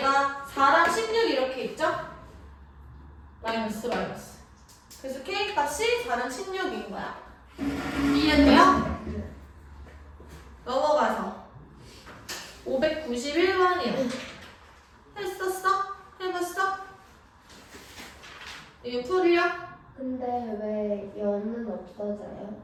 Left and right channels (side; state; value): both; identical; correlation 1.00